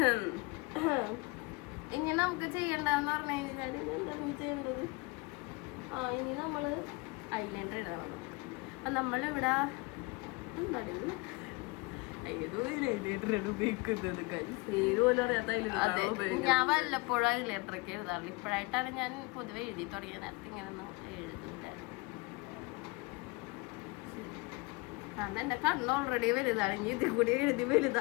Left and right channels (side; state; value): right; quieter; 26.2 dB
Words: ഇനി നമുക്ക് ചെയ്യണ്ടെന്ന് പറഞ്ഞു കഴിഞ്ഞാൽ എന്താണ് ചെയ്യേണ്ടത്? ഇനി നമ്മള് ഐലൈനർ ഇടണം. അപ്പൊ നമ്മളിവിടെ എന്താണ് ഞാൻ വല്ലപ്പോഴും ഐലൈനറൊക്കെ എഴുതാറുള്ളൂ. ഇപ്പോഴായിട്ടാണ് ഞാൻ പൊതുവെ എഴുതി തുടങ്ങിയത്. നേരത്തെ ഇങ്ങനെയൊന്നും എഴുതൂല. കാരണം എന്റെ കണ്ണ് ഓൾറെഡി വലുതാണ്. ഇനി ഇതിൽ കൂടി എഴുതി